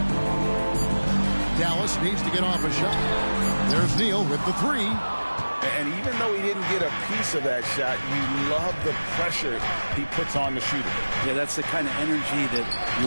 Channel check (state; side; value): inverted; both; correlation -1.00